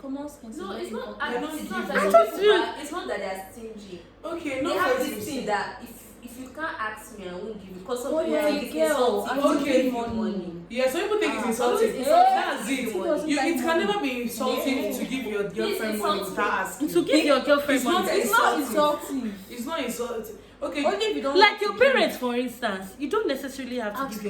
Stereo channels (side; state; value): both; identical; correlation 1.00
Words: sense. No, is it's very not. important. You're not It's not giving. that I just people feel- are- it's not that they are stingy. Okay, They no have for this you. thing that if you can't ask me, I won't give you. Because some Oh, people yeah, think it's girl, insulting I to will give give you money. money. Yeah, some people think it's Ah. insulting. Always That's insulting. it. Who doesn't You, like it can money? never be insulting Yeah. to give your girlfriend money insulting. without asking. To give your girlfriend It's not money. It's not insulting. insulting. It's not insulting. Okay. Only if you don't Like want your to give. parents, for instance, you don't necessarily have to Ask- give